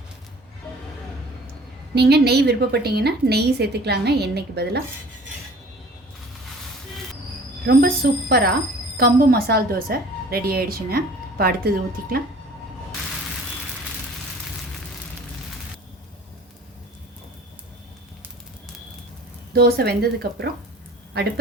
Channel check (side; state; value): both; normal; correlation 0.48